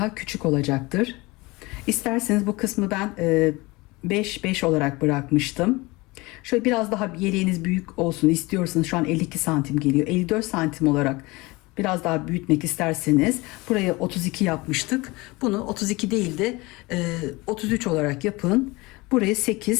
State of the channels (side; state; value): right; quieter; 23.1 dB